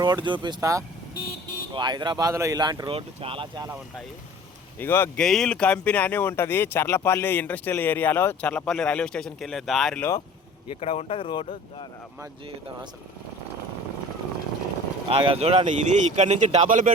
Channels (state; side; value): normal; both; correlation 0.44